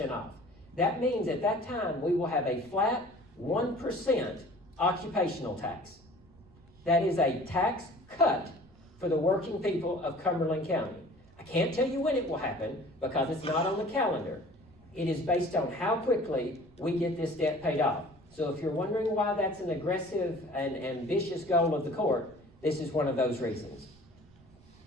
off. That means at that time we will have a flat 1% occupational tax. That is a tax cut for the working people of Cumberland County. I can't tell you when it will happen because it's not on the calendar. It is based on how quickly we get this debt paid off. So if you're wondering why that's an aggressive and ambitious goal of the court, this is one of those reasons.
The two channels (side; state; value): right; noise; rumble, 26 dB below the sound